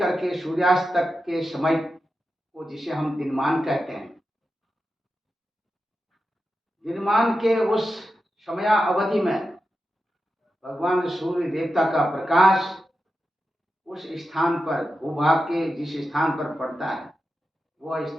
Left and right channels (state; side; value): normal; both; correlation 0.90